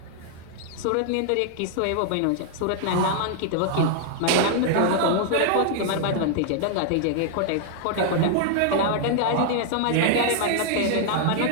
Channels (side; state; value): both; different; correlation -0.01